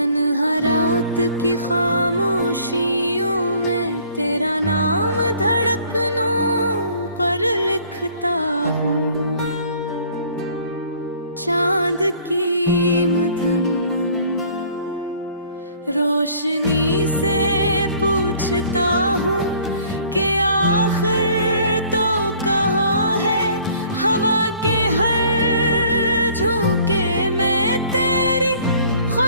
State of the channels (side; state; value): both; inverted; correlation -0.55